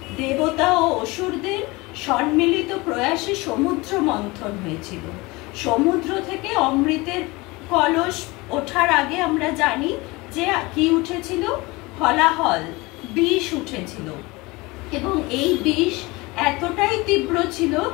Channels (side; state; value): right; quieter; 23.3 dB